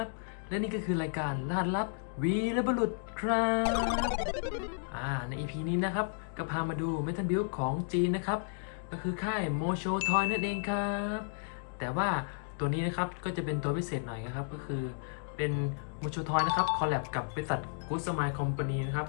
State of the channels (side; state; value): right; silent; digital silence